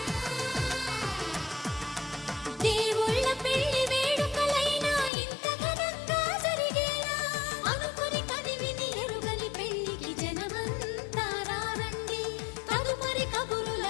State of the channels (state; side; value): drops out; right; at 5.1 s